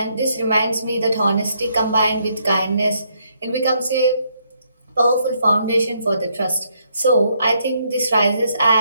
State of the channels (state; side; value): inverted; both; correlation -0.73